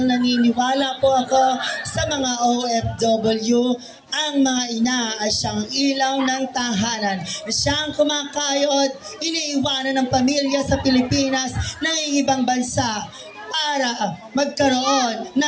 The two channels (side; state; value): both; identical; correlation 1.00